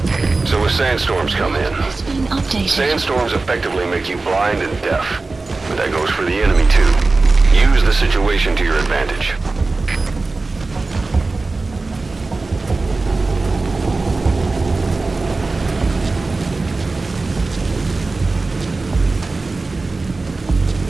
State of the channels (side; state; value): left; quieter; 3.6 dB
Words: So as sandstorms come in, sandstorms effectively make you blind and deaf. But that goes for the enemy too. Use the situation to your advantage.